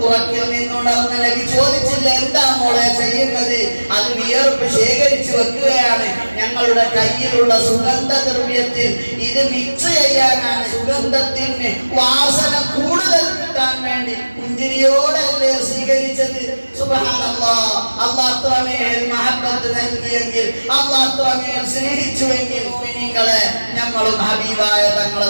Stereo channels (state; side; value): inverted; both; correlation -1.00